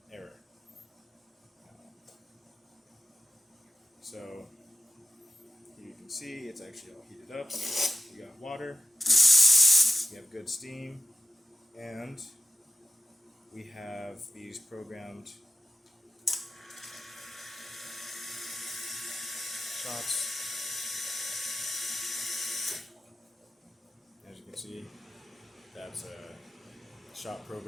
error. So here you can see it's actually all heated up. We got water, we have good steam, and we have these programmed shots. As you can see, that's a shot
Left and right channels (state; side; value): normal; both; correlation 0.93